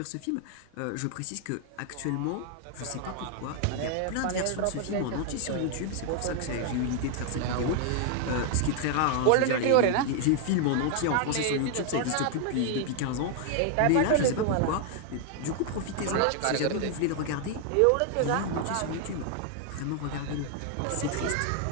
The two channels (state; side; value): different; both; correlation 0.00